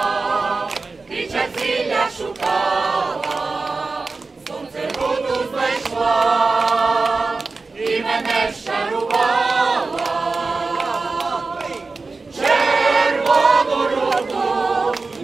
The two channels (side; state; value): left; quieter; 3.9 dB